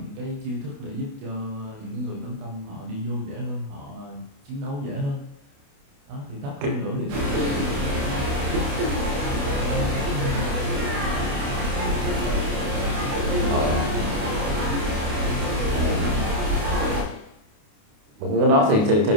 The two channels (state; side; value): late; left; 28 ms